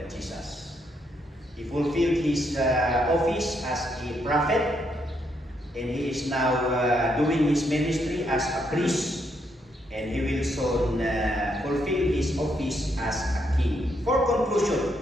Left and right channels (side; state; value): both; normal; correlation 0.76